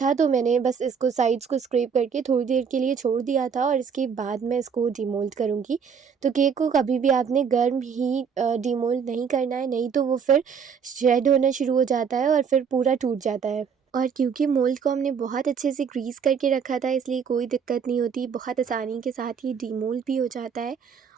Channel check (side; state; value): left; quieter; 6.6 dB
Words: तो मैंने बस इसको साइड्स को स्क्रैप करके थोड़ी देर के लिए छोड़ दिया था और इसके बाद मैं इसको डीमोल्ड करूँगी। तो केक को कभी भी आपने गर्म ही डीमोल्ड नहीं करना है, नहीं तो वो फिर शेड होना शुरू हो जाता है और फिर पूरा टूट जाता है। और क्योंकि मोल्ड को हमने बहुत अच्छे से ग्रीस करके रखा था, इसलिए कोई दिक्कत नहीं होती, बहुत आसानी के साथ ही डीमोल्ड भी हो जाता है।